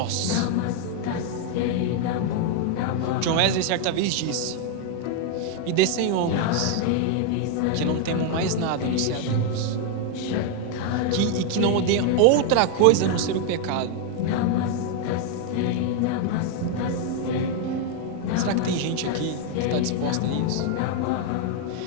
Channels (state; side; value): different; both; correlation 0.00